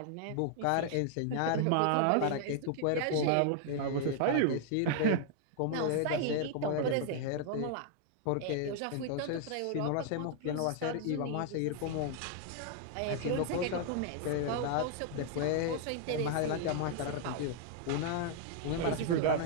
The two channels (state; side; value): different; both; correlation 0.00